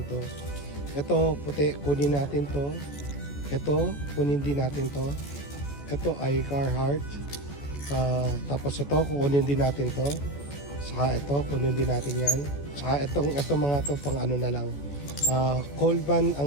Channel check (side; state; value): right; late; 14 ms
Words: to. Ito puti, kunin natin to. Ito, kunin din natin to. Ito ay Carhartt. Tapos ito, kukunin din natin to. Saka ito, kunin din natin yan. Saka itong mga to pang ano na lang. Colban